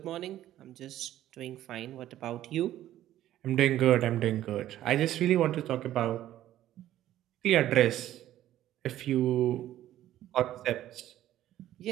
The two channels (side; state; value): left; quieter; 13.1 dB